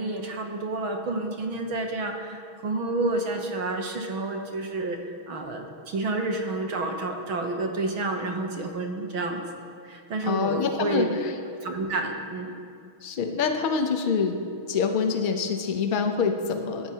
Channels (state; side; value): late; left; 6.2 ms